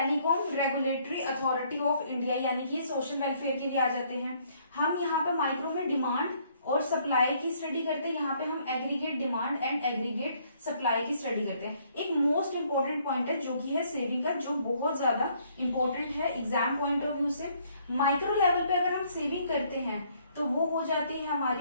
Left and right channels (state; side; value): inverted; both; correlation -0.66